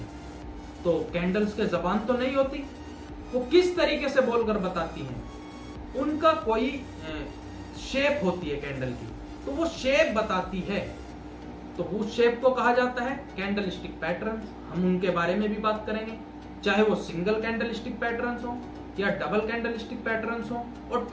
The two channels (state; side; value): identical; both; correlation 1.00